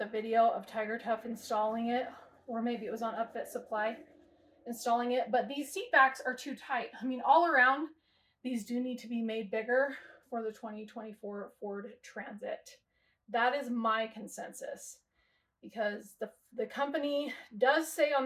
video of TigerTough installing it, or maybe it was on Upfit Supply installing it. But these seat backs are too tight. I mean, all around, these do need to be made bigger for the 2024 Ford Transit. That is my consensus, because the company does say on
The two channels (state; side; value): identical; both; correlation 1.00